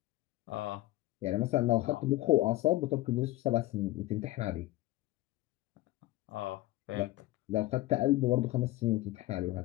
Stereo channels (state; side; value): quieter; right; 17.4 dB